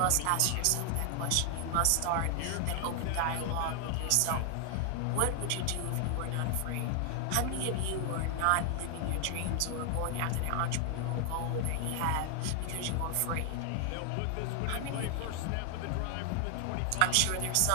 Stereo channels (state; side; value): different; both; correlation 0.00